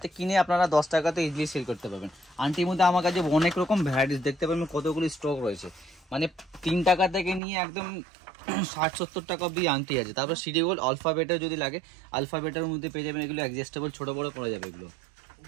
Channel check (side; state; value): left; drops out; at 7.4 s